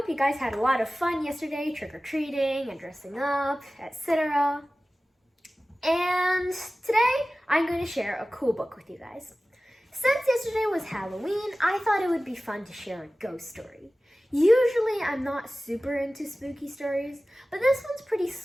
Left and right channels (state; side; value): normal; both; correlation 0.96